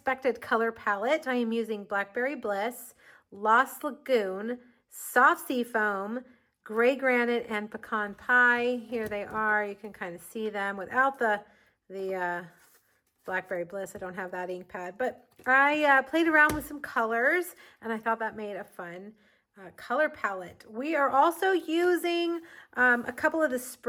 color palette. I am using Blackberry Bliss, Lost Lagoon, Soft Sea Foam, Gray Granite, and Pecan Pie. Here they are. You can kind of see them without the Blackberry Bliss. I don't have that ink pad, but I played around with some colors and I thought that made a fun color palette. We are also using a couple of the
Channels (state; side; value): identical; both; correlation 1.00